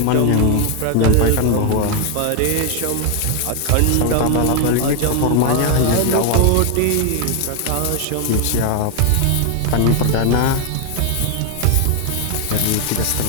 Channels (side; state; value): both; different; correlation 0.00